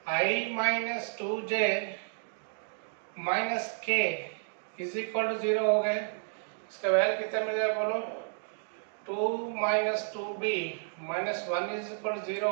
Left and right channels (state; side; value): silent; left; digital silence